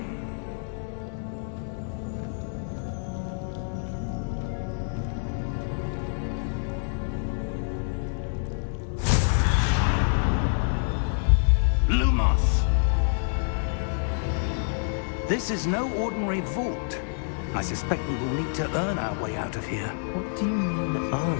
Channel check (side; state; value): right; silent; 60 dB below the other